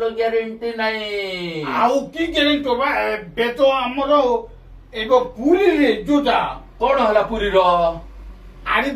ଗ୍ୟାରେଣ୍ଟି ନାହିଁ ଆଉ କି ଗ୍ୟାରେଣ୍ଟି ହବା ଏବେ ତ ଆମର ଏବେ ପୁରୀରେ ଯୋଉଟା କଣ ହେଲା ପୁରୀର ଆରେ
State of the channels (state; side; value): identical; both; correlation 1.00